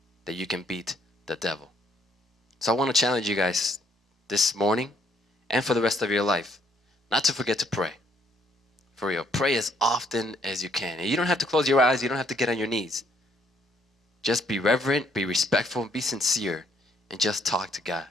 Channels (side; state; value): both; normal; correlation 0.68